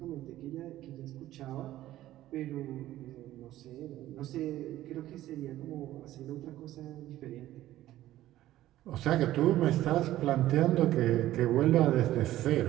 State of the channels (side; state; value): left; quieter; 14.4 dB